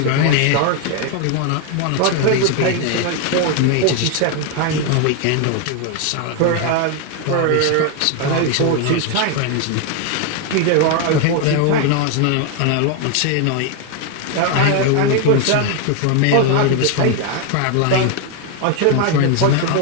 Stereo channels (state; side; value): different; both; correlation 0.01